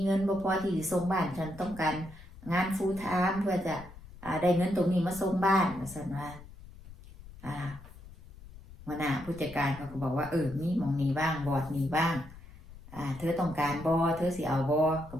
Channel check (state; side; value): noise; left; rumble, 18 dB below the sound